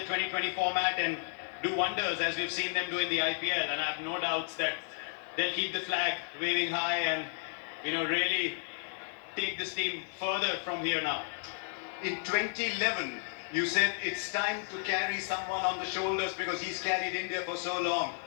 2020 format and do wonders as we've seen them do in the IPL. And I have no doubts that they'll keep the flag waving high and really take this team further from here now. In 2011, you said it's time to carry someone on the shoulders because he's carried India for so long.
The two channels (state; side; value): silent; right; 56 dB below the other